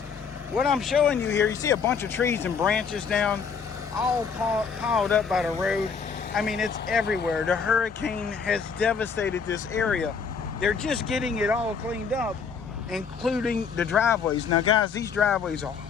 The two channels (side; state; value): right; quieter; 5.9 dB